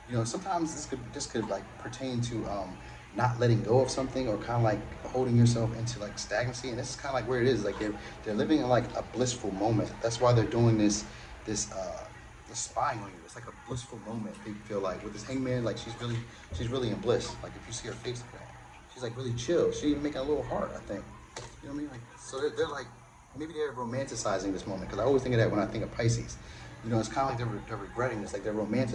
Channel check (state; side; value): identical; both; correlation 1.00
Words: Sometimes this could like pertain to not letting go of something, or kind of like holding yourself into like stagnancy. And this is kind of like where it is. Like they're living in like a blissful moment. That's why they're doing this spying on you. It's like a blissful moment. They feel like with this Hangman, like she's really in bliss. Like if you see her face, she's like really chill. She even making a little heart, I think. You know what I mean? Like so they're like. Maybe they're romanticizing this moment, because I always think of that when I think of Pisces. It's kind of like they're regretting this, like they're